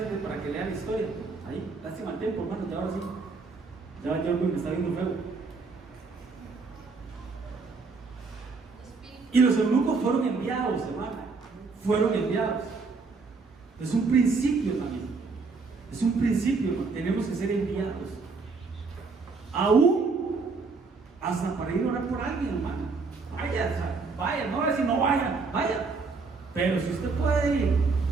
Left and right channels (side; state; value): left; quieter; 4.3 dB